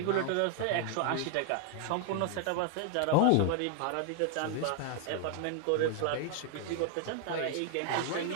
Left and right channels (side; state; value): both; different; correlation 0.00